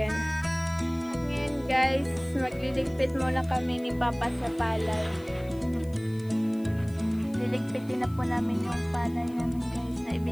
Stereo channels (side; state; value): left; noise; hiss, 26 dB below the sound